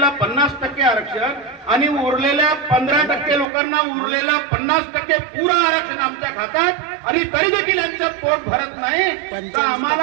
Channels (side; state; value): left; drops out; at 3.5 s